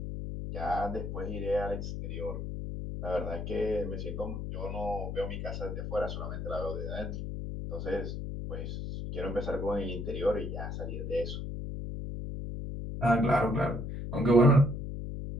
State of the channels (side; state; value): left; noise; hum, 5 dB below the sound